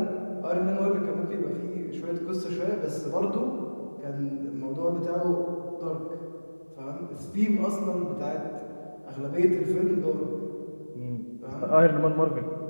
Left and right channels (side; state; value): both; inverted; correlation -1.00